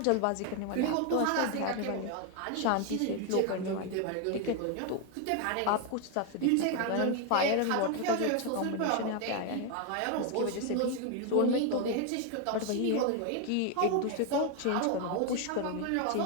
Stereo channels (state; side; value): different; both; correlation 0.01